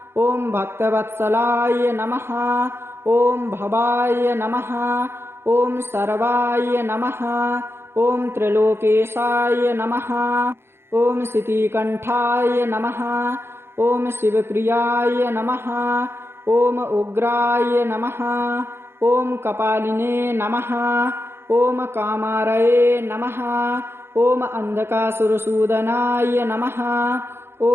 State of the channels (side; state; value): left; late; 0.11 ms